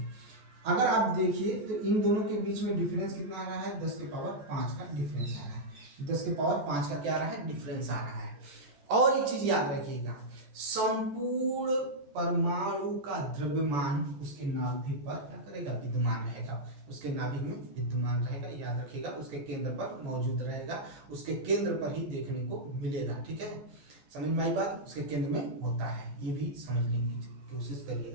अगर आप देखिए तो इन दोनों के बीच में डिफरेंस कितना आ रहा है, 10 के पावर 5 का डिफरेंस आ रहा है, 10 के पावर 5 का क्या आ रहा है, डिफरेंस आ रहा है। और एक चीज याद रखिएगा, संपूर्ण परमाणु का द्रव्यमान उसके नाभिक पर क्या करेगा, विद्यमान रहेगा, उसके नाभिक में विद्यमान रहेगा, याद रखिएगा, उसके केंद्र पर मौजूद रहेगा, उसके केंद्र पर ही देखने को मिलेगा, ठीक है, समझ में आई बात, उसके केंद्र में होता है, ये भी समझने की कोशिश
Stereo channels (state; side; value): late; left; 15 ms